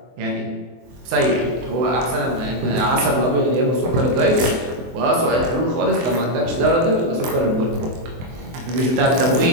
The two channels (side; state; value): left; late; 23 ms